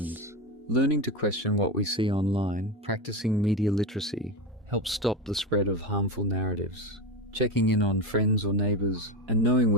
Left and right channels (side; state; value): both; normal; correlation 0.18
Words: Learning to question what we see online, practicing media literacy, helps stop the spread of harmful narratives. Checking in on friends or neighbours and knowing